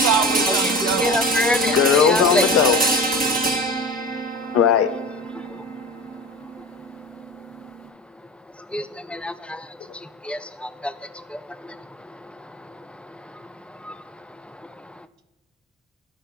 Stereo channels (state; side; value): normal; both; correlation 0.34